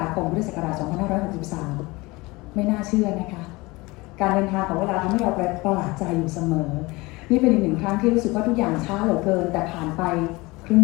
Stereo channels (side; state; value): right; quieter; 22.9 dB